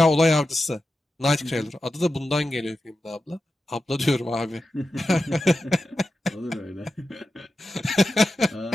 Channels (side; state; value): both; normal; correlation 0.91